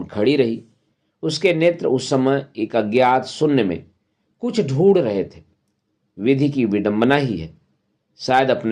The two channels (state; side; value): identical; both; correlation 1.00